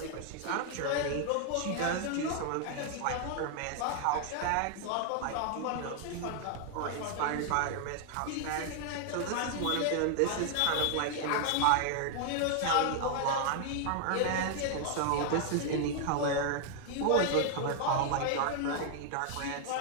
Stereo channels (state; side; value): different; both; correlation 0.00